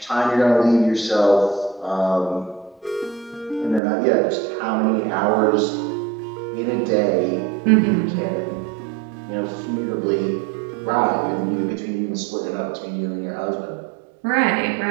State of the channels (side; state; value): left; drops out; at 3.8 s